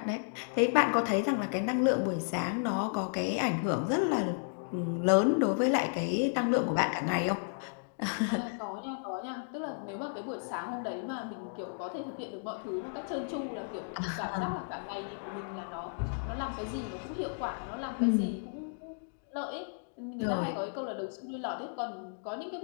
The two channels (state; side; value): silent; right; digital silence